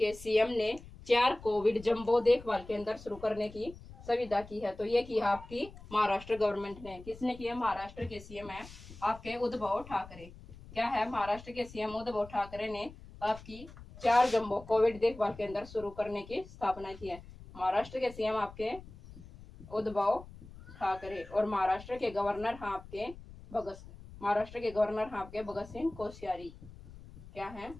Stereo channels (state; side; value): noise; left; rumble, 17 dB below the sound